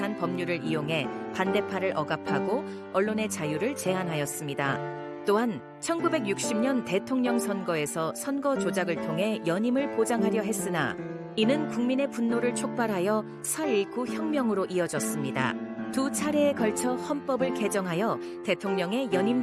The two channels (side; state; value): both; identical; correlation 1.00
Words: 법률을 이용해 반대파를 억압하고 언론의 자유를 제한하였습니다. 또한 1960년 대통령 선거에서 선거 조작을 통해 연임을 보장하려 했으나 이는 국민의 분노를 촉발하여 4.19 혁명으로 이어졌습니다. 두 차례에 걸쳐 헌법을 개정하여 대통령의 연임